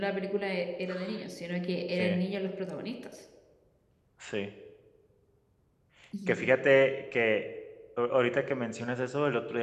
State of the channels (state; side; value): identical; both; correlation 1.00